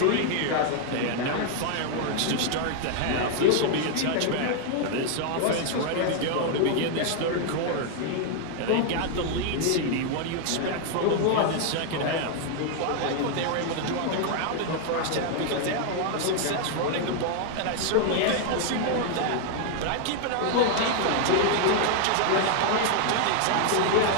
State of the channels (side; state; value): both; different; correlation 0.00